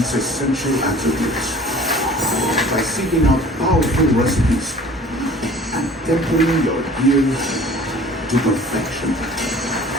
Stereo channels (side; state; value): both; normal; correlation 0.47